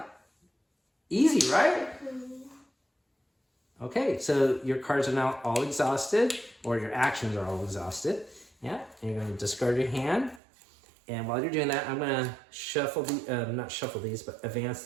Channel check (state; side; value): drops out; left; at 10.4 s